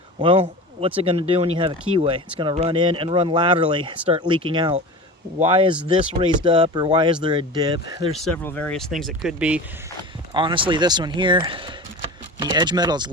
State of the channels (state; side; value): normal; both; correlation 0.32